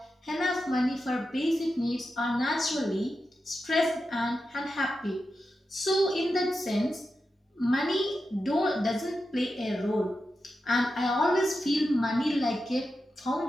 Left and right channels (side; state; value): both; normal; correlation 0.89